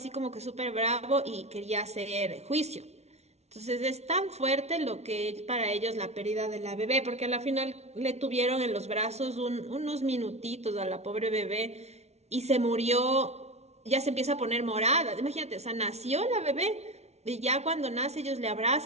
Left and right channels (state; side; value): late; left; 0.31 ms